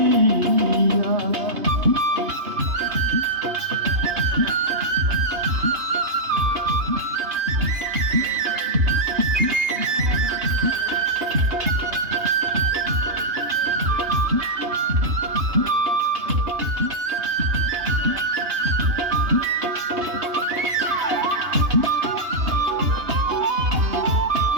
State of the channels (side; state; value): left; late; 2.9 ms